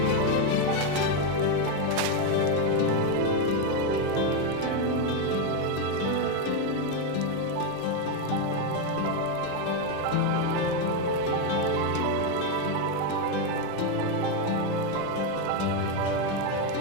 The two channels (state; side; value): different; both; correlation 0.03